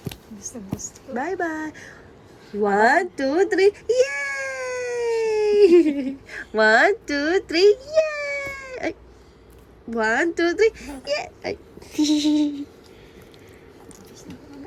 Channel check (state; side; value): identical; both; correlation 1.00